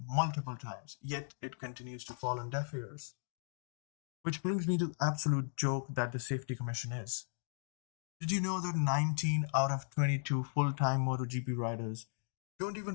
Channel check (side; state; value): right; silent; digital silence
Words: multiple times, yet it continues to fall on deaf ears. Which brings me to the absolute joke that the Safety Commission is. Did you know that 19 out of 22 full-time MotoGP riders don't